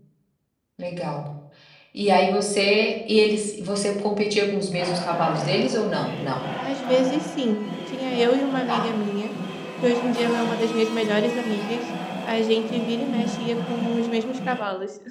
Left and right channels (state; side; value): identical; both; correlation 1.00